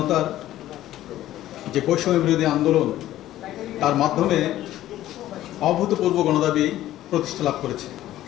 যে বৈষম্য বিরোধী আন্দোলন, তার মাধ্যমে অভূতপূর্ব গণদাবি প্রতিষ্ঠা লাভ করেছে।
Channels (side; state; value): right; quieter; 13.9 dB